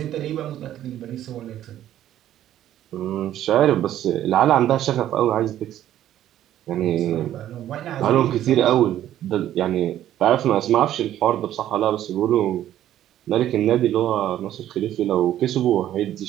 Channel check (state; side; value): quieter; left; 12.1 dB